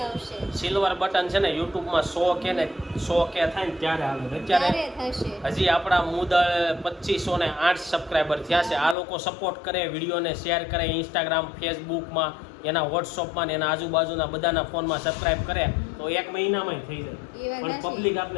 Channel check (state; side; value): drops out; right; at 9.0 s